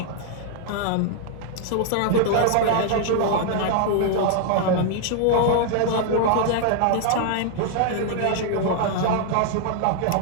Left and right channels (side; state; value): both; different; correlation 0.00